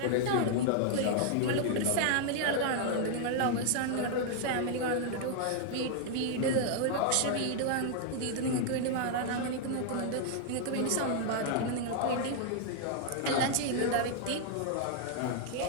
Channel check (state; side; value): different; both; correlation 0.00